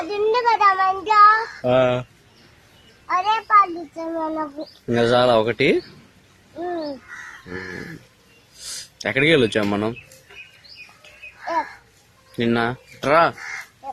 ఉంది కదా మంచిగా, అదే పాలు ఇంకా చాలా ఒకటి. ఎక్కడికి వెళ్ళొచ్చాం మనం నిన్న? రా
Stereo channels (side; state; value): both; identical; correlation 1.00